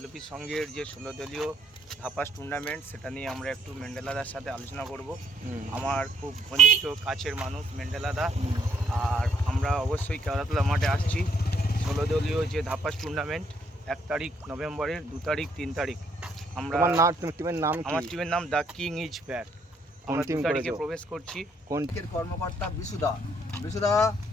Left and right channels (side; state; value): both; normal; correlation 0.68